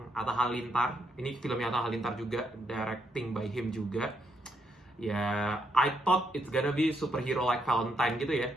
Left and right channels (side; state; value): both; normal; correlation 0.77